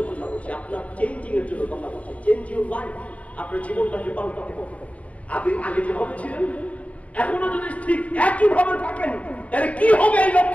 কথা বলছি, আপনার চেঞ্জিং এর জন্য কথা বলছি। চেঞ্জ ইউর লাইফ, আপনার জীবনটাকে পাল্টাতে হবে। আপনি আগে যেভাবে ছিলেন এখনো যদি ঠিক একই ভাবে থাকেন, তাহলে কি হবে? এই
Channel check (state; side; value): late; right; 0.067 ms